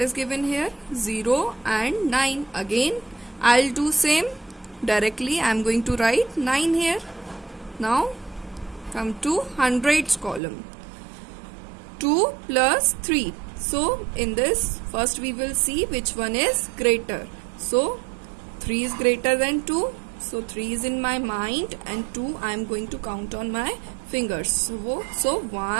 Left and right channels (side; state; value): left; drops out; at 10.4 s